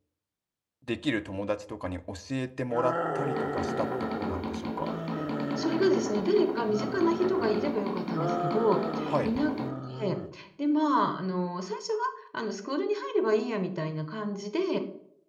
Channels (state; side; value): identical; both; correlation 1.00